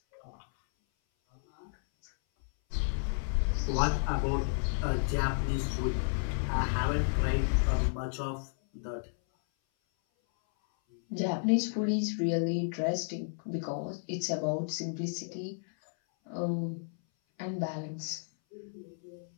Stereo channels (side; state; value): right; silent; 56 dB below the other